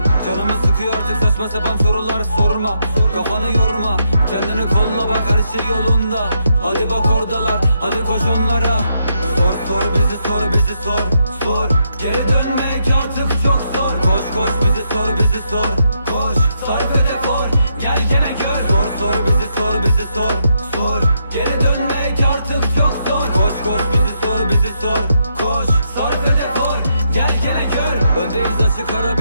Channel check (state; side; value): inverted; both; correlation -0.80